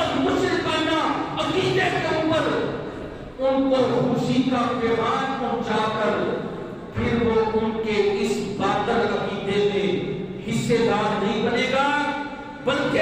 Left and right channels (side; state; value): both; identical; correlation 1.00